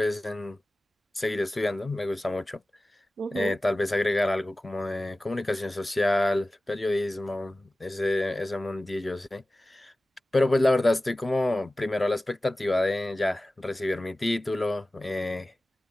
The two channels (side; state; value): both; normal; correlation 0.96